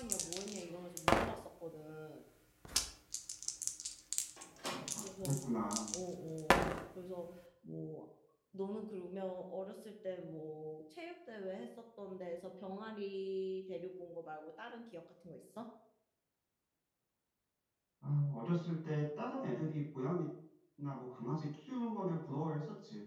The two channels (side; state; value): both; identical; correlation 1.00